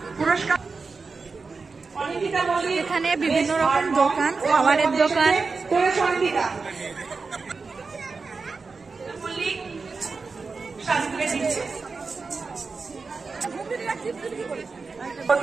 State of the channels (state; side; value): quieter; left; 4.4 dB